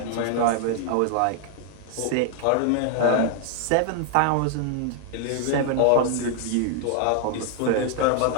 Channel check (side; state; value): both; different; correlation 0.00